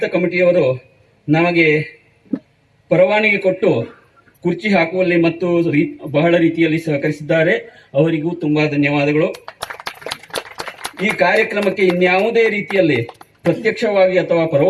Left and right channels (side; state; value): both; identical; correlation 1.00